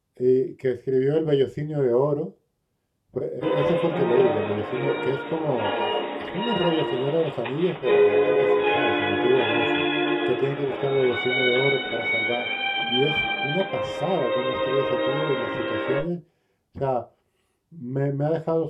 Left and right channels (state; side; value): identical; both; correlation 1.00